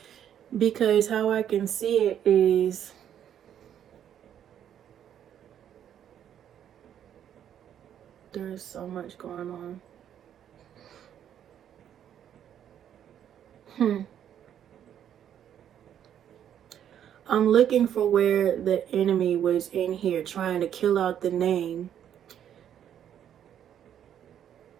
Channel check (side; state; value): left; quieter; 9.8 dB